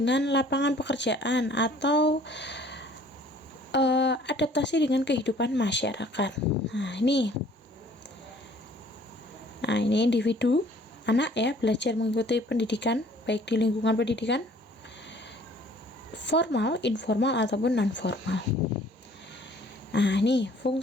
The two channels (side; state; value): both; normal; correlation 0.55